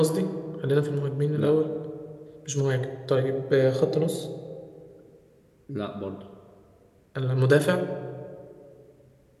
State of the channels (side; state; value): both; identical; correlation 1.00